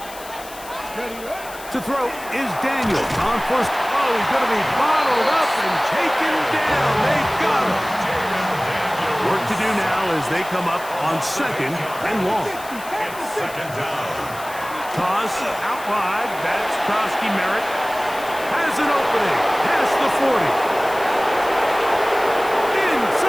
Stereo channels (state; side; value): noise; left; hiss, 16 dB below the sound